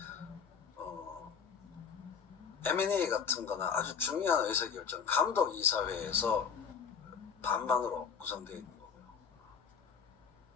M&A 같은 거나 아주 중요한 의사결정, 감독이사회에서 반반으로 구성되어 있는 거고요.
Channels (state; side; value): quieter; right; 6.5 dB